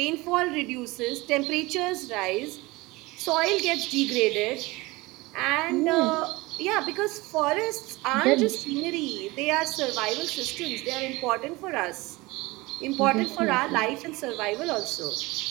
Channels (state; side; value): quieter; left; 22.1 dB